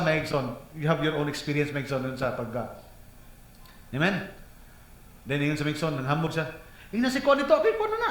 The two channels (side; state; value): both; identical; correlation 1.00